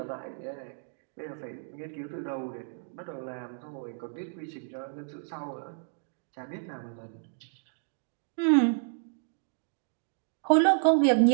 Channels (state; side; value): silent; left; digital silence